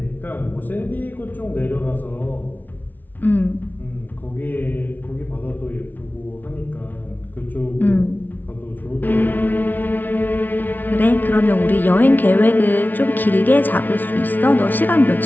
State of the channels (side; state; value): right; late; 0.084 ms